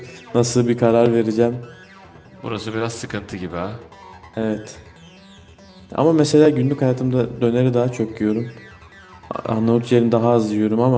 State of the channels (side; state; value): both; identical; correlation 1.00